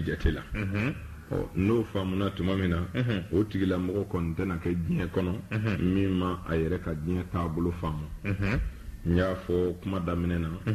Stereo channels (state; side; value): identical; both; correlation 1.00